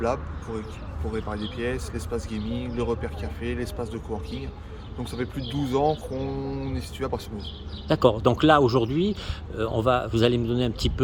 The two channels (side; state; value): both; identical; correlation 1.00